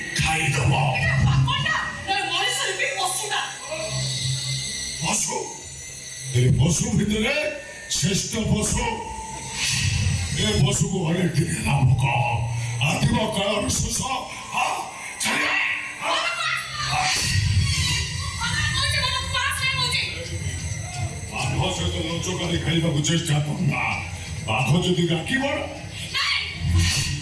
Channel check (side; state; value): both; identical; correlation 1.00